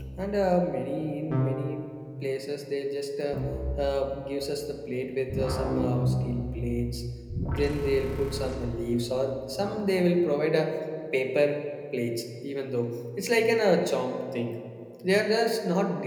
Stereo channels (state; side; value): identical; both; correlation 1.00